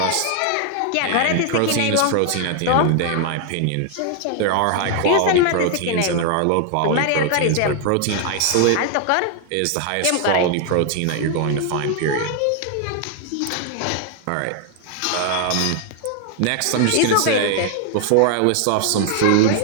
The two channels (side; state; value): both; different; correlation 0.00